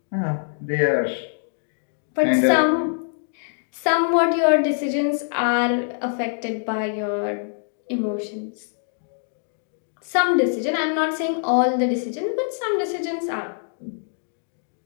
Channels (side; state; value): right; silent; digital silence